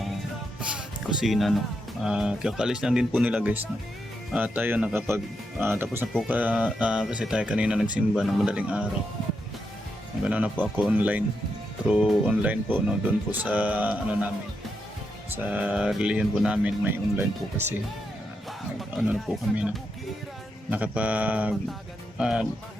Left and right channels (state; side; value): normal; both; correlation 0.83